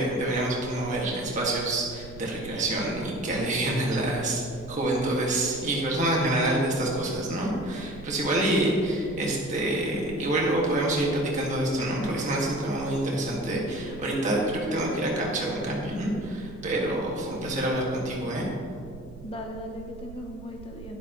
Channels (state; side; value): noise; right; rumble, 16 dB below the sound